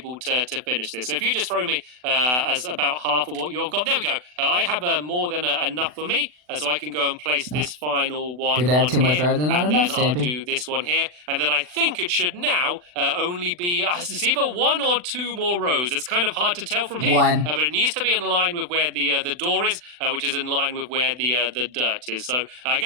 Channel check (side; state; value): left; late; 40 ms